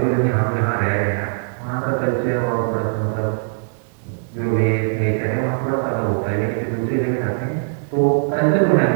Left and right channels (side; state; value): left; silent; 65 dB below the other